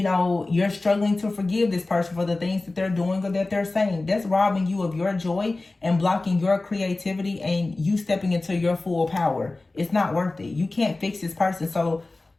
know, you're struggling to forgive this person for the things that they're doing or that they're saying. That's robbing you of your joy and blocking your creativity and you stepping into your full power. It's not worth it. You can't fix this person. So,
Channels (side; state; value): right; quieter; 3.1 dB